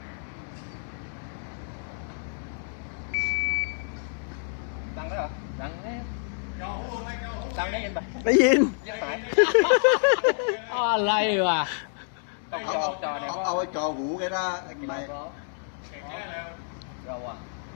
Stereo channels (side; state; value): right; silent; digital silence